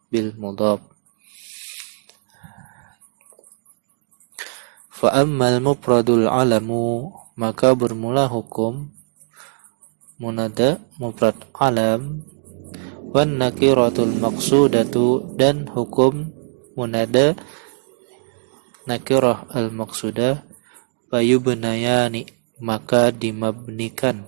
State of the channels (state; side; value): silent; left; digital silence